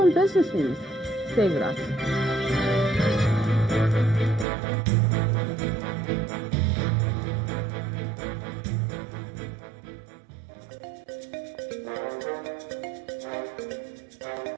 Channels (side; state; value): left; drops out; at 4.5 s